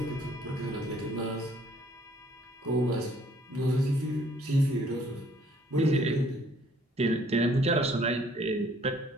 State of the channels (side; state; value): both; normal; correlation 0.61